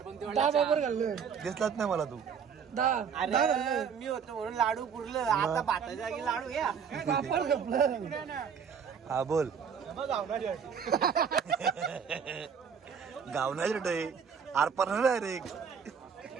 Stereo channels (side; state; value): left; quieter; 6.9 dB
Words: बरोबर घाललं. दिसलाच नाही मला तू. 10 अरे मी होतो म्हणून लाडू पुरलं. आता भाताच्या जागी लाडू या. पापड घपलं. हा बोल. गावना रे आरपार नाही रे.